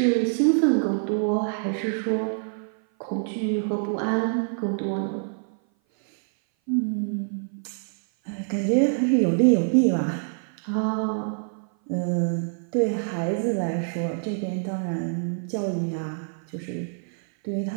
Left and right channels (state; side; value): silent; left; 57 dB below the other